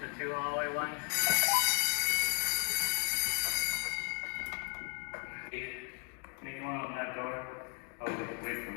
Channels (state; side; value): quieter; right; 39.1 dB